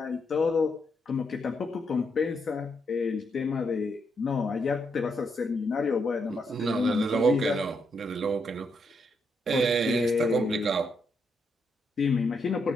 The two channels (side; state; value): both; normal; correlation 0.79